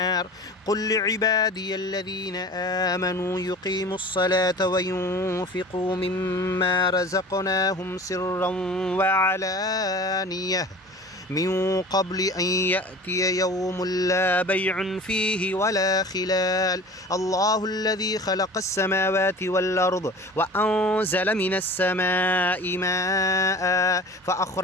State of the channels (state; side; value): normal; both; correlation 0.39